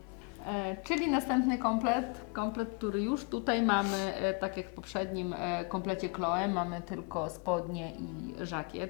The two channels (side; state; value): right; quieter; 32.4 dB